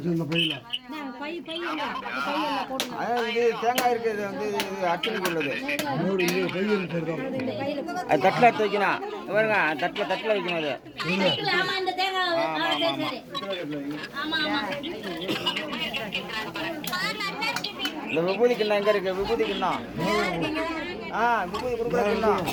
இது தேங்காய் இருக்குது வந்து அர்ச்சனைக்கு உள்ளது. அது தட்டில் எடுத்து வைக்கணும் பாருங்க, தட்டில் வைக்கணும் அது. இந்த விபூதி கிண்ணம் எங்க இருக்கு? விபூதி கிண்ணம் விபூதி கொடுக்குற கிண்ணம்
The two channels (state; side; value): identical; both; correlation 1.00